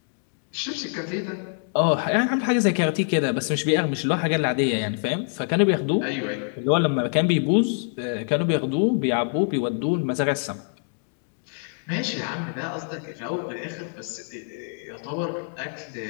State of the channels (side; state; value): right; silent; 61 dB below the other